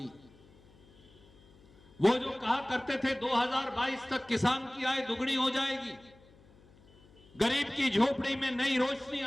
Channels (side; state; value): left; noise; hum, 27 dB below the sound